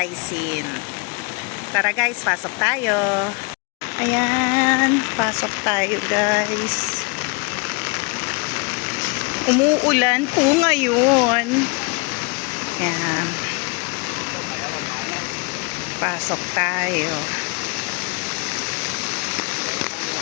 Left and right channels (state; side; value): quieter; right; 31.7 dB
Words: Sin. Tara guys, pasok tayo. Ayan, pasok tayo guys. Umuulan po ngayon. Ayan. Pasok tayo.